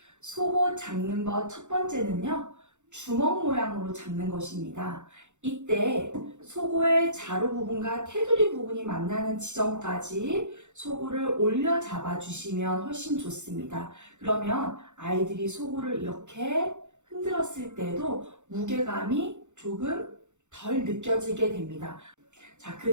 속옷 잡는 것 첫 번째는요, 주먹 모양으로 잡는 것입니다. 이때 속옷의 자루 부분과 테두리 부분이 만나는 지점까지 속옷을 올려 잡아주시면 훨씬 좋습니다. 그러면 아이들이 속옷을 이렇게 흔들었을 때도 무게감이 조금 덜 느껴지게 됩니다. 자, 그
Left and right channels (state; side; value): late; left; 0.84 ms